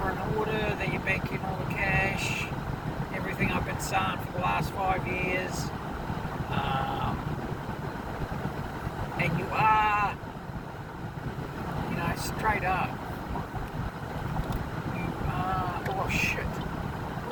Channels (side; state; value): both; identical; correlation 1.00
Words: in order, that you're banking all the cash, everything I've been saying for the last 5 years, and you are, straight up, you are,